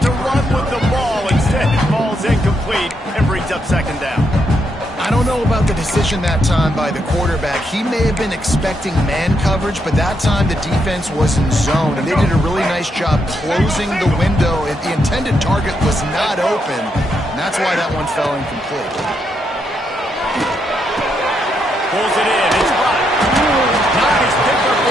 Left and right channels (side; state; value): both; normal; correlation 0.79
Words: to run with the ball. Instead, it falls incomplete and brings up second down. I don't know about the decision that time by the quarterback. He may have been expecting man coverage, but that time the defense was in zone, and they did a really nice job closing the window. The intended target was not open, and that's why that one fell incomplete. Pulls it in. It's hot. Nice pickup